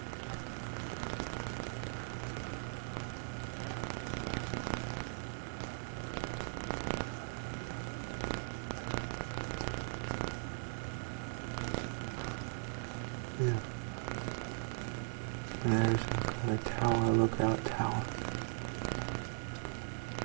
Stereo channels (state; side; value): silent; left; digital silence